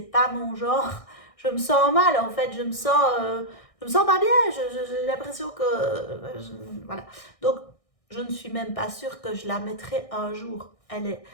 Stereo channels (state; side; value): late; right; 1.6 ms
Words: pas mon genre. Je me sens mal, en fait. Je me sens pas bien. J'ai l'impression que, voilà. Donc, je ne suis même pas sûre que je la mettrai un jour.